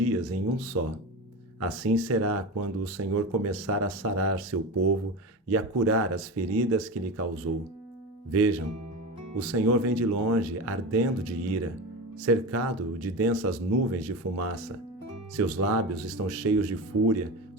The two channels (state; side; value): normal; both; correlation 0.24